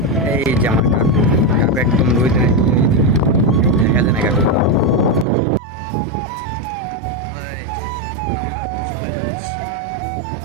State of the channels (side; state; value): left; drops out; at 5.2 s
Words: এই যে আমার কাকু, কাকু একদম রোদে দেখা যায় না কাকু। ওই, চলে যাচ্ছি।